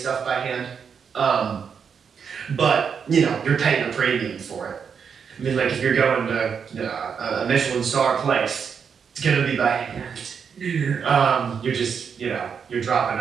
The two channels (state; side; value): quieter; left; 6.7 dB